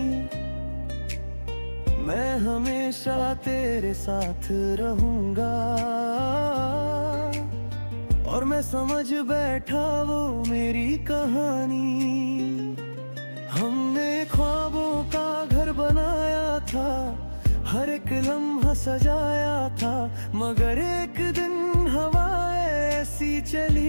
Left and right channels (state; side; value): inverted; both; correlation -1.00